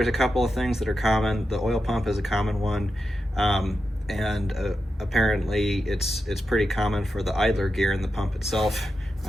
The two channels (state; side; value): normal; both; correlation 0.89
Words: a couple of things that are common. The oil pump is a common one, and apparently it's pretty common for the idler gear in the pump itself,